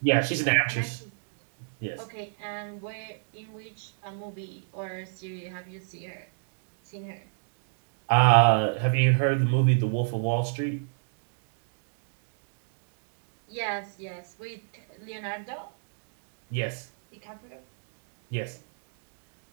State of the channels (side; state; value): left; silent; digital silence